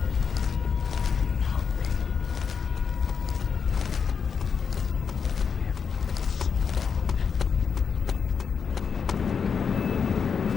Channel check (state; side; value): quieter; right; 6.4 dB